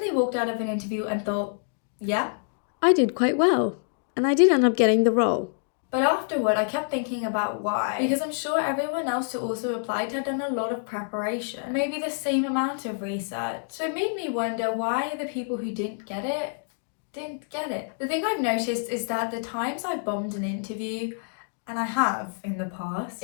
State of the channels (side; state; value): right; silent; digital silence